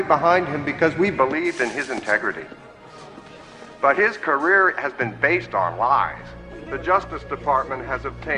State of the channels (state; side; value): identical; both; correlation 1.00